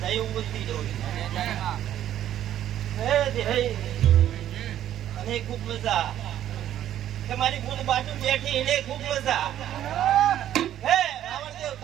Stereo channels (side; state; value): left; quieter; 11.6 dB